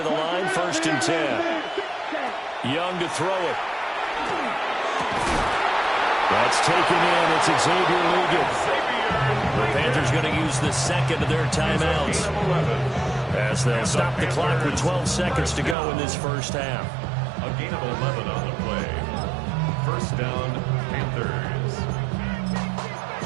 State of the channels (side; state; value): left; drops out; at 15.8 s